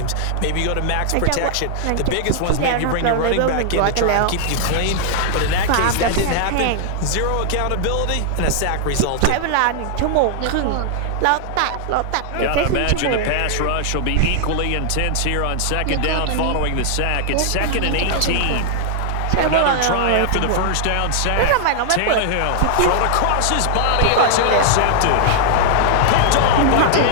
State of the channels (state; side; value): different; both; correlation -0.01